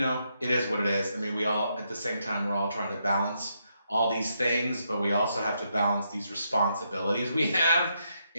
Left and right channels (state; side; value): inverted; both; correlation -0.79